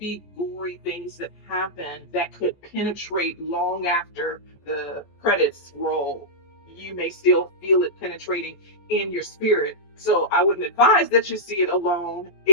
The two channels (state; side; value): late; right; 14 ms